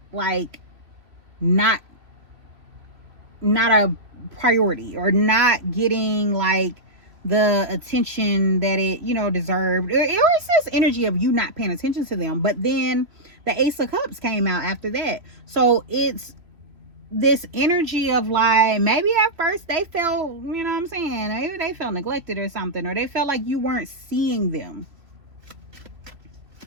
like not a priority, or not getting like the attention that it deserved. It was this energy of you not paying attention to them, but then the Ace of Cups came out after that. So it's this energy of like, maybe at first they felt, you know what I'm saying, maybe they felt neglected or something, or they felt like you weren't seeing them.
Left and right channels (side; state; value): left; late; 3.0 ms